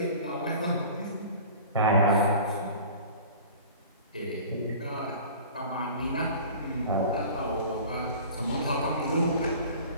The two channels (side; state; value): both; inverted; correlation -0.42